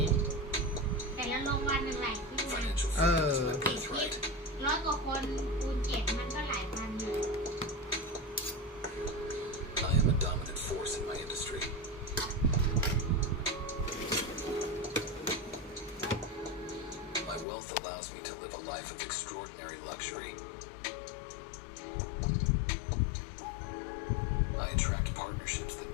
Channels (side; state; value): right; drops out; at 17.4 s